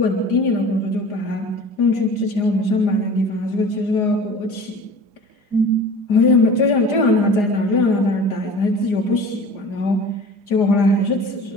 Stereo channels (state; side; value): late; right; 4.9 ms